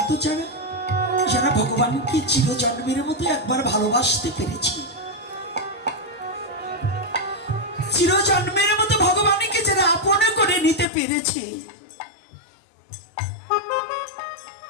যারা, যারা ভগবানকে চিরজন্মের মতো একবার ভালোবাসতে পেরেছে, চিরজন্মের মতো ভগবানকে যারা আপন করে নিতে পেরেছে,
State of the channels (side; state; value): right; drops out; at 10.9 s